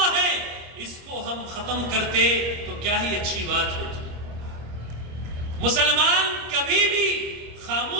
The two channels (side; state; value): left; late; 25 ms